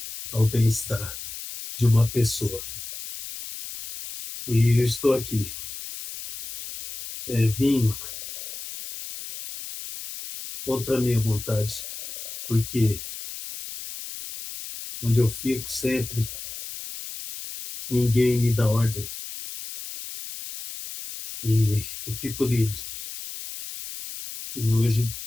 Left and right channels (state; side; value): noise; left; hiss, 10 dB below the sound